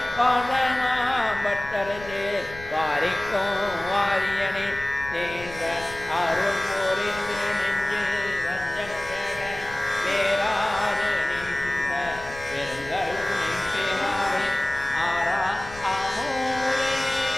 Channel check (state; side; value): noise; left; rumble, 16 dB below the sound